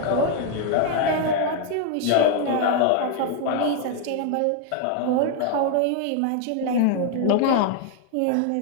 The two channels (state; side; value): different; both; correlation 0.01